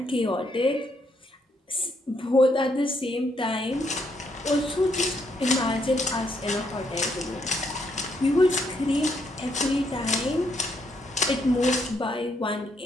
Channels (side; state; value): both; normal; correlation 0.74